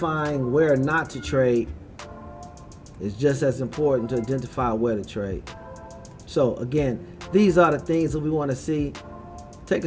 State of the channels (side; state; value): both; identical; correlation 1.00